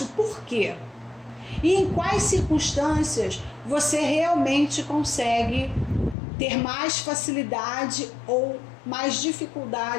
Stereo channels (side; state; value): right; drops out; at 6.2 s